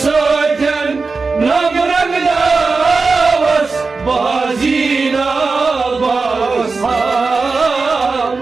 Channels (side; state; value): left; quieter; 4.2 dB